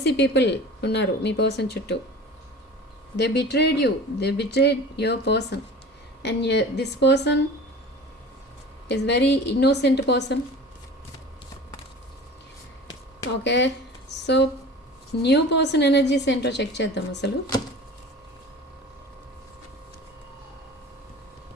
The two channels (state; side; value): normal; both; correlation 0.39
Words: people ఉన్నారు మీ పర్సన్ చుట్టూ. They betrayed you, they betrayed your person. And this person is very innocent person. Okay, so new person energies ఏంటో చెక్ చేద్దాం అసలు.